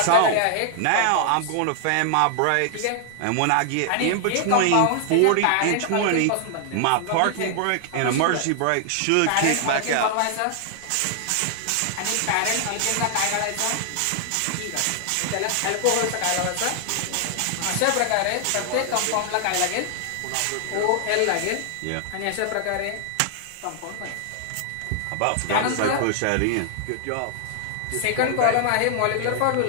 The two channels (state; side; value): different; both; correlation 0.00